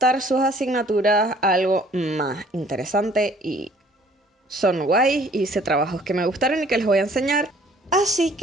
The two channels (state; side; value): normal; both; correlation 0.57